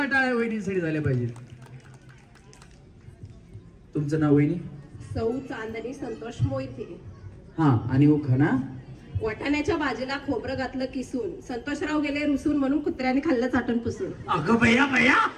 टाळ्या वहिनींसाठी झाल्या पाहिजे. तुमचं नाव वहिनी. सौ चांदणी संतोष मोहिते. हा आणि उखाणा. वाटाण्याच्या भाजीला खोबरं घातलं किसून, संतोषराव गेले रुसून म्हणून कुत्र्याने खाल्लं चाटण पुसून. अगं भैया भैया,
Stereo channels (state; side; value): identical; both; correlation 1.00